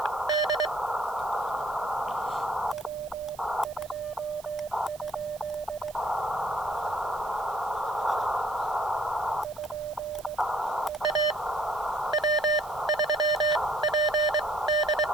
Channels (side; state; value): right; noise; hiss, 21 dB below the sound